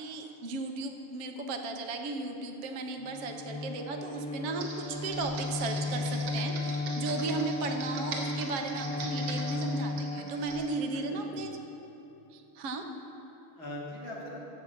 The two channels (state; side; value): late; left; 7.3 ms